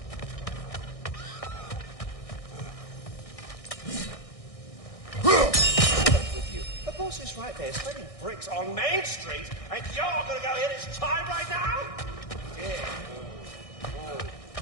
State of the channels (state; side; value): late; right; 1.6 ms